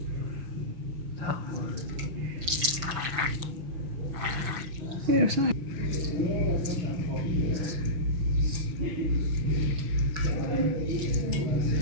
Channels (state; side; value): late; left; 6.0 ms